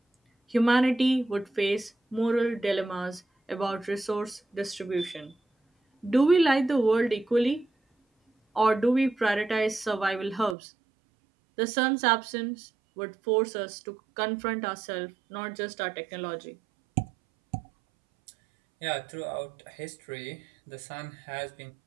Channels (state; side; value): drops out; left; at 10.6 s